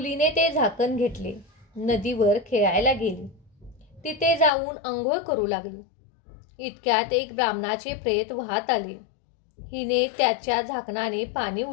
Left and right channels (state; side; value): drops out; right; at 4.5 s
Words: ते झाकण घेतले. नदीवर खेळायला गेली. तिथे जाऊन अंघोळ करू लागली. इतक्यात एक ब्राह्मणाचे प्रेत वाहत आले. हिने त्याच्या झाकणाने पाणी